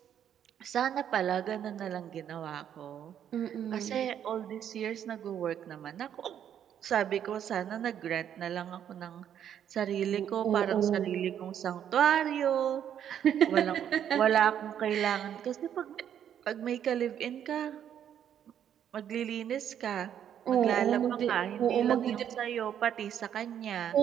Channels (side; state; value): left; quieter; 9.5 dB